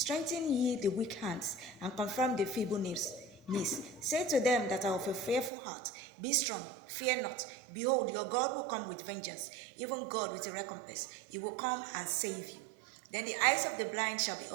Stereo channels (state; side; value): drops out; left; at 5.5 s